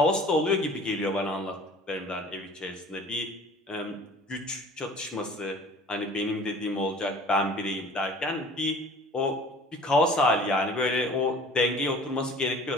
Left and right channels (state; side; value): normal; both; correlation 0.46